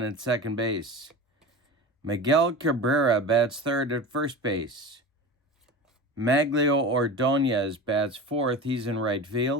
at second base. Miguel Cabrera bats third at first base. Maglio Ordonez bats fourth. He's in right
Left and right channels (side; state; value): both; normal; correlation 0.30